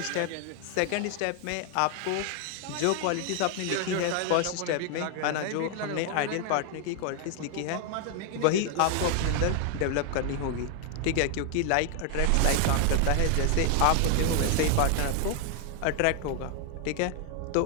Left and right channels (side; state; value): both; different; correlation 0.00